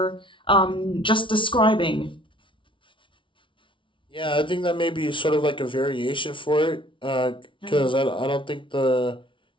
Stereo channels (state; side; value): late; right; 0.25 ms